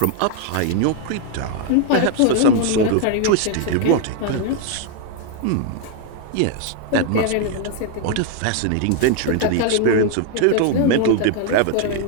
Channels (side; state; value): both; different; correlation 0.00